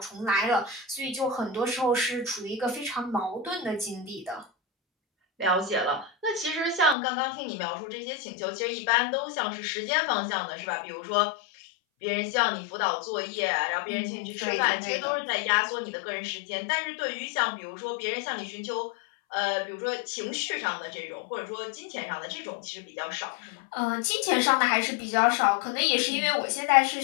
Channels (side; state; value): right; drops out; at 7.0 s